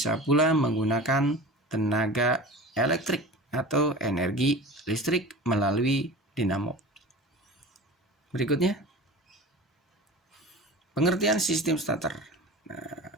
pula menggunakan tenaga elektrik atau energi listrik melalui dinamo. Berikutnya, pengertian sistem starter. Nah,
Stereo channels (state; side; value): normal; both; correlation 0.36